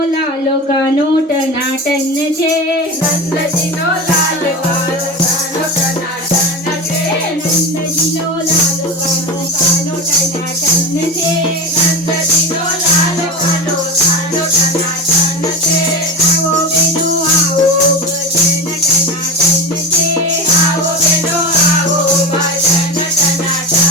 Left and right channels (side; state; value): both; normal; correlation 0.25